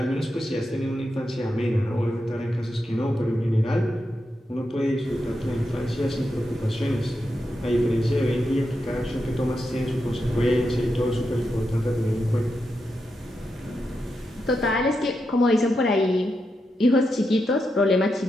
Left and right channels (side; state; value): both; normal; correlation 0.86